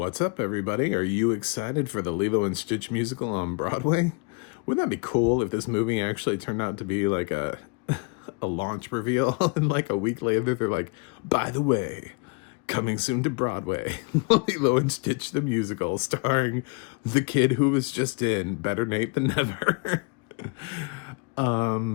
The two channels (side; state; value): right; quieter; 31.1 dB